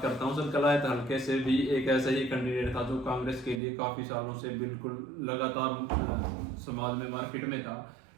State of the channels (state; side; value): drops out; left; at 3.6 s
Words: करता हूँ सर। कलायत हल्के से भी एक ऐसा ही कैंडिडेट था जो कांग्रेस के लिए काफी सालों से बिल्कुल लगातार समाज में मार्केट में था,